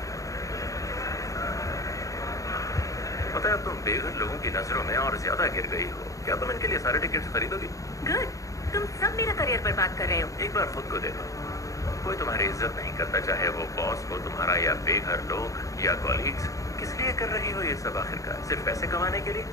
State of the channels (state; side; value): late; right; 0.16 ms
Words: पता है, तुम बेघर लोगों की नजरों में और ज्यादा गिर गई हो। क्या तुम इनके लिए सारे टिकट्स खरीदोगी? गुड, तुम सब मेरा करियर बर्बाद कर रहे हो। एक बार खुद को देखो। कोई तुम्हारी इज्जत नहीं करता, चाहे वो बॉस हो तुम्हारा या बेघर लोग या कॉलीग्स। किस लिए कर रही हो ये सब आखिरकार? सिर्फ पैसे कमाने के लिए?